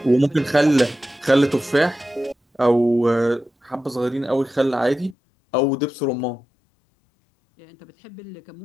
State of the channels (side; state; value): right; drops out; at 5.2 s